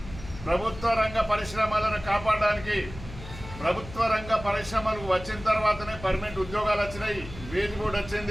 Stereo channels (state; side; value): noise; left; hum, 14 dB below the sound